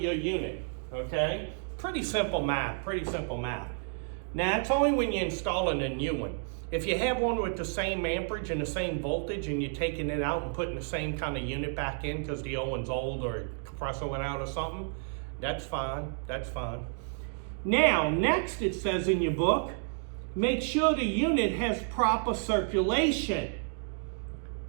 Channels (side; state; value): left; silent; 57 dB below the other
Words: unit, okay? Pretty simple math, pretty simple math. Now, it's only when you're installing a new one. If you have one with the same amperage and the same voltage and you're taking it out and putting the same kind of unit back in because the old one's old or a compressor went out or something, that's fine, that's fine. Now, next it says in your book, make sure the unit has proper circulation.